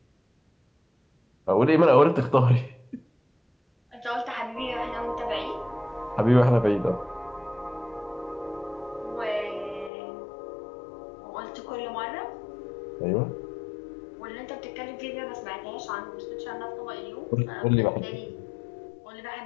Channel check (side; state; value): right; drops out; at 9.9 s